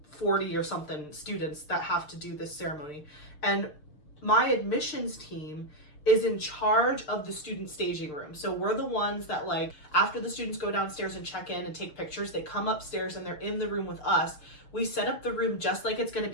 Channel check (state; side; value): late; right; 6.6 ms